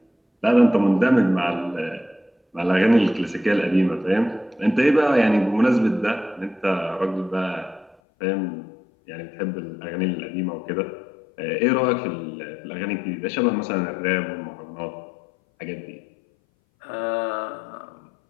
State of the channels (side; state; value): right; drops out; at 8.0 s